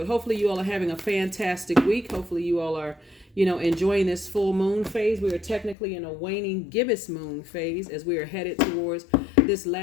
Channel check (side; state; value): right; drops out; at 5.8 s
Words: Hopefully you all are having a fantastic week. Hopefully you all are enjoying this full moon phase. We are technically in a waning gibbous moon phase as we are headed towards this